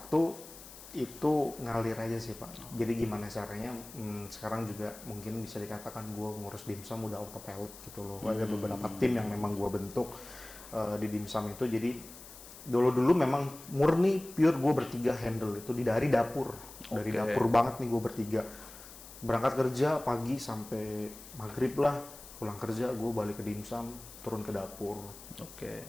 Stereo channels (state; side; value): noise; left; hiss, 16 dB below the sound